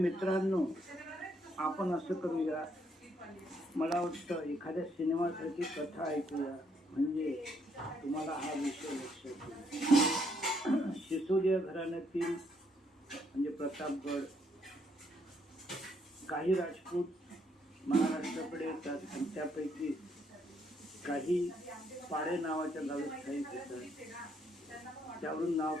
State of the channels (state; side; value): normal; both; correlation 0.72